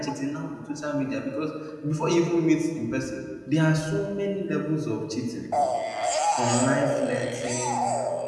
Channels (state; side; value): identical; both; correlation 1.00